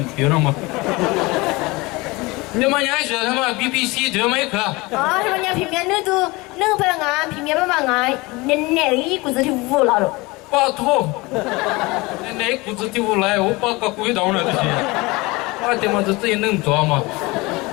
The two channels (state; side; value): quieter; right; 23.4 dB